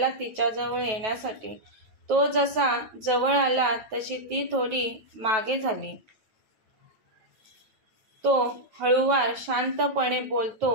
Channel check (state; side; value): late; left; 9.3 ms